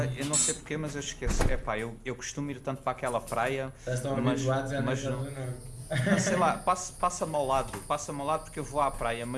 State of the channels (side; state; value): both; identical; correlation 1.00